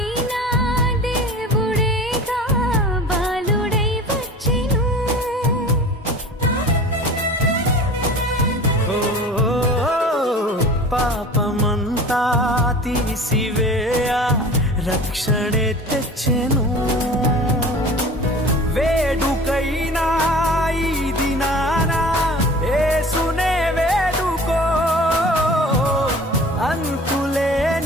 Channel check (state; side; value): normal; both; correlation 0.40